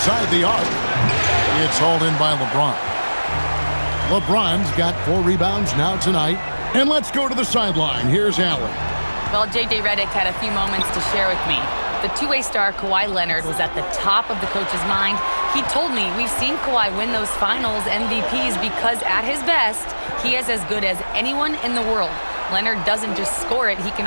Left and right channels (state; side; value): inverted; both; correlation -1.00